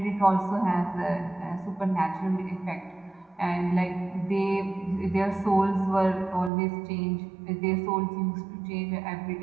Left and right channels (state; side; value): drops out; left; at 6.5 s